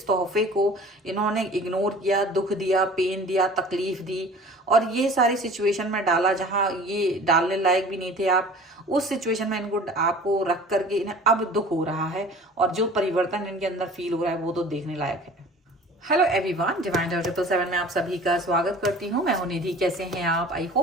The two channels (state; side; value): normal; both; correlation 0.44